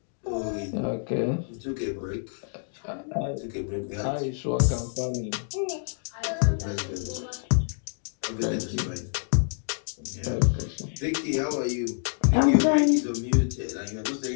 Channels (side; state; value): right; silent; 60 dB below the other